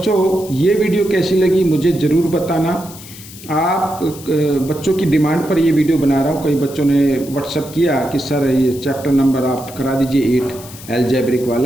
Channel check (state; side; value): noise; left; hiss, 17 dB below the sound